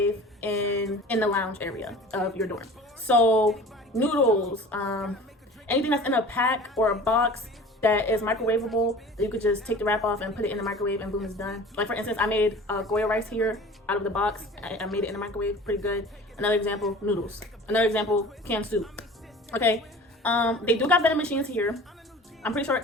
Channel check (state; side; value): normal; both; correlation 0.41